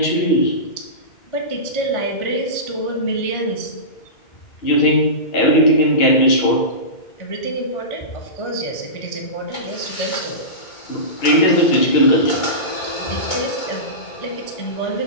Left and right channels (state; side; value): late; right; 2.2 ms